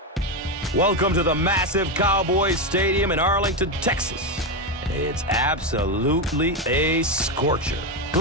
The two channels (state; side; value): normal; both; correlation 0.10